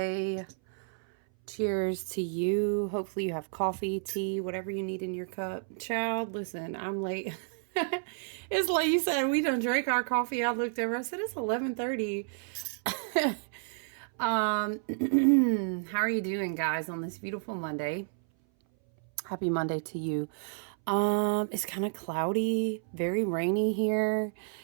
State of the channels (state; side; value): silent; left; 57 dB below the other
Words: Cheers to you. Hopefully you have coffee, tea, whatever you need in your cup. Child, listen, I'm late. It's like you said, we don't drink our coffee. I looked over. I said it's 11:30. How are you doing, guys, on this beautiful Monday? Happy Monday to you. It's kind of cloudy, very rainy here.